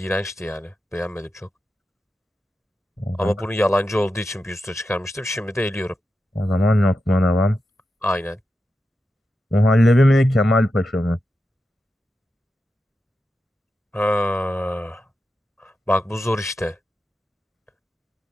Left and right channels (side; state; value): both; normal; correlation 0.89